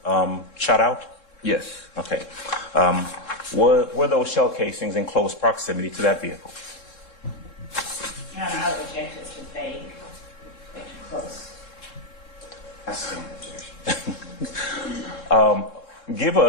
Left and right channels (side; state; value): right; late; 3.7 ms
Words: shot out? Yes. Okay. Were those shell casings in close proximity to that vehicle? Your Honor, I would object to too vague, too close. I stand in objection. Give